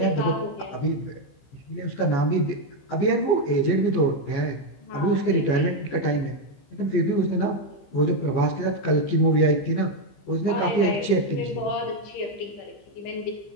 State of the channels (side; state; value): right; late; 15 ms